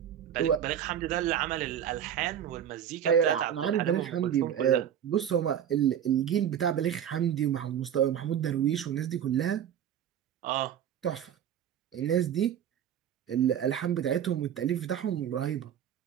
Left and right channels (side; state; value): left; quieter; 9.5 dB